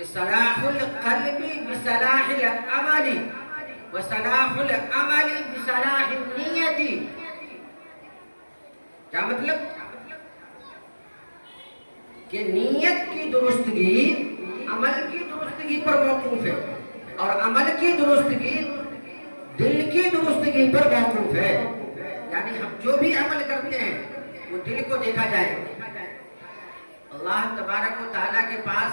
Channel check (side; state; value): both; inverted; correlation -1.00